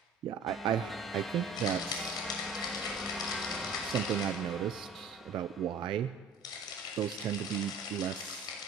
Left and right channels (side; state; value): left; quieter; 4.1 dB